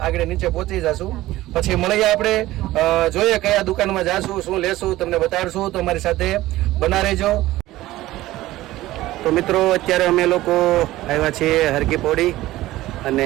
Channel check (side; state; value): left; quieter; 16.5 dB